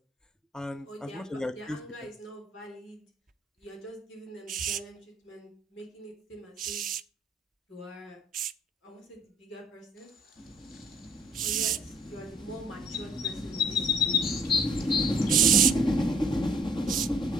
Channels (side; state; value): both; normal; correlation 0.60